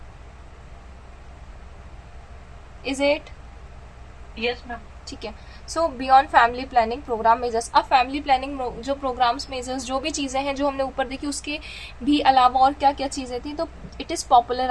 Is it? Yes ma'am. ठीक है, so beyond family planning programme measures. अब फैमिली प्लानिंग जो प्रोग्राम्स मेजर्स जो भी चीज़ें हैं जो हमने ऊपर देखी, उसके भी अलावा और क्या क्या चीज़ें थी, तो it is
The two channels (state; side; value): identical; both; correlation 1.00